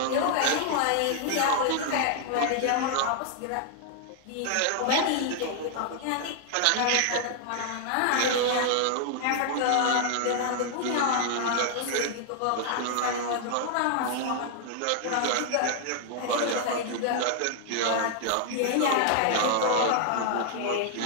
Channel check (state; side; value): different; both; correlation 0.00